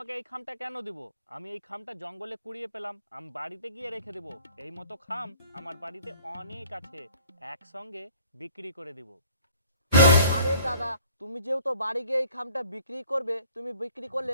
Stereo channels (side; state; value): both; inverted; correlation -0.53